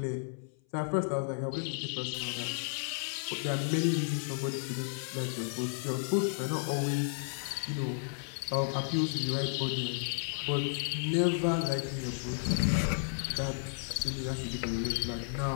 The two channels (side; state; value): right; silent; 56 dB below the other